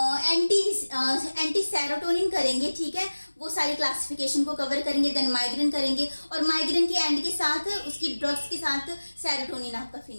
एंटी सेरोटोनिन करेंगे, ठीक है, वो सारी क्लासिफिकेशन को कवर करेंगे, देन माइग्रेन करेंगे, और माइग्रेन के एंड के साथ उसकी ड्रग्स के साथ सेरोटोनिन आपका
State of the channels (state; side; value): inverted; both; correlation -1.00